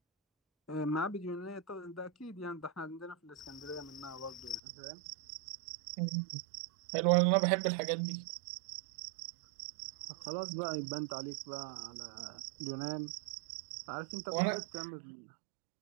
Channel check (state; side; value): drops out; left; at 4.6 s